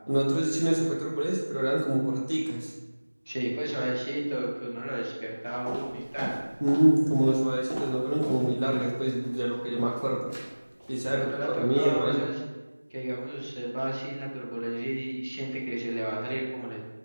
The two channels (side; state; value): both; inverted; correlation -1.00